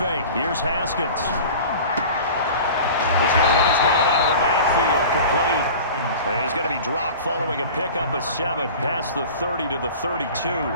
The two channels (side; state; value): both; inverted; correlation -0.38